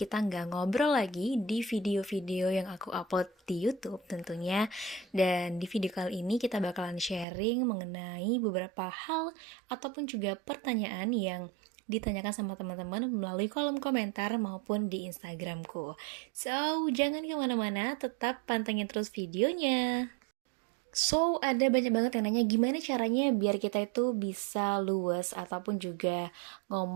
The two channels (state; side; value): drops out; left; at 7.2 s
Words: nggak ngobrol lagi di video-video yang aku upload di YouTube tentunya. Dan di video kali ini kita bakalan sharing mengenai beberapa hal ataupun juga pertanyaan yang ditanyakan sama teman-teman melalui kolom komentar maupun di Instagramku. So, jangan kemana-mana, tetap pantengin terus videonya. So, ada banyak banget yang nanya gimana caranya biar kita itu bisa luwes ataupun juga